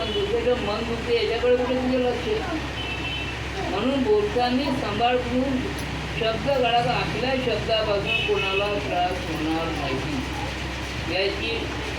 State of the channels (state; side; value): identical; both; correlation 1.00